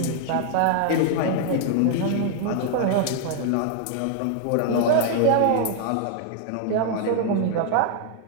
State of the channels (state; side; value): different; both; correlation 0.00